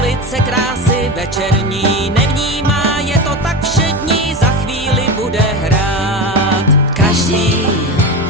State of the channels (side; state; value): both; normal; correlation 0.23